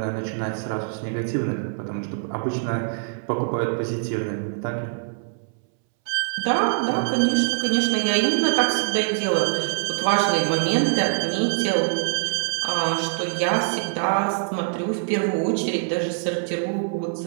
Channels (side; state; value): left; silent; 63 dB below the other